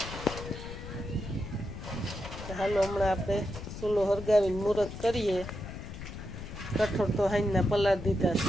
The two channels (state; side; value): noise; left; rumble, 9 dB below the sound